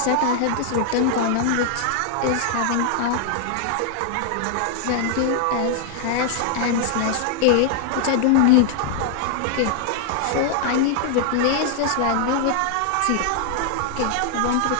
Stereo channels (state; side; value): different; both; correlation 0.00